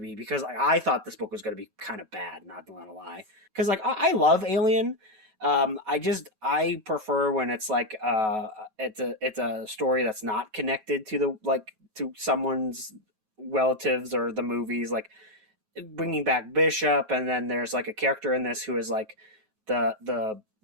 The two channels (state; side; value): late; left; 9.3 ms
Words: because like, I thought this book was going to be kind of bad, not gonna lie. Because like I love Alien. I prefer when it's like it's a story that's not connected to the like to someone's relatives or the movies, like bringing back Bishop, and then there's like a character in this who is like the